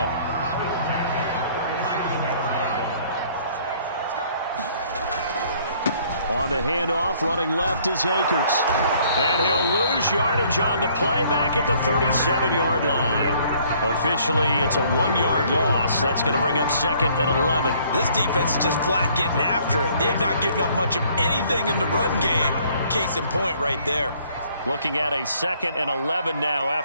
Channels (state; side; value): inverted; both; correlation -0.61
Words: On the handoff, running left is Akers. And he'll lose yardage on the play back at the 37-yard line. Officially, it's a 1-yard loss. That's going to bring up 2nd and 11. This defense is just flat getting after it. They have not given up much of anything in the run game. Case in point right there. Looking at a 2nd and 11 now